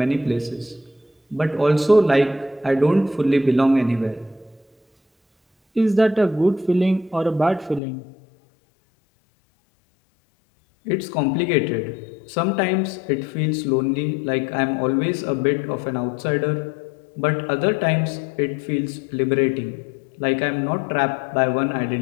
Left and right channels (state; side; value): drops out; right; at 7.8 s